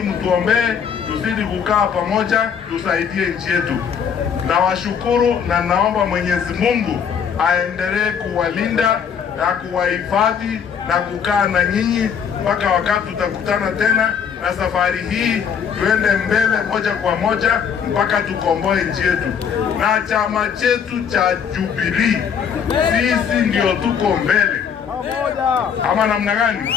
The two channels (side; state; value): right; quieter; 7.3 dB